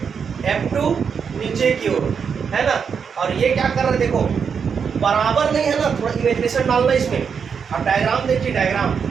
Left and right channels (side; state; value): left; quieter; 6.5 dB